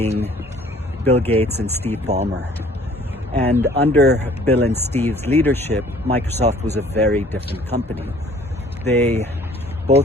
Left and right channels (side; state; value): both; normal; correlation 0.55